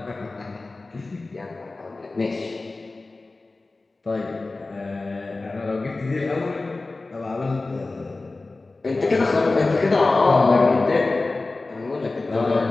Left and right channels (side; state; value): right; quieter; 3.4 dB